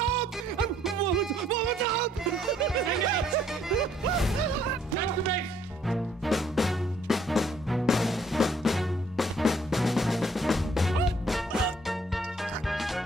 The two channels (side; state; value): both; normal; correlation 0.64